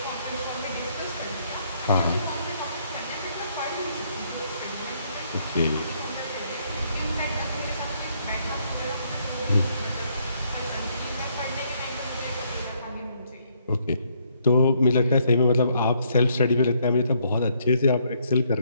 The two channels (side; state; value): both; inverted; correlation -0.70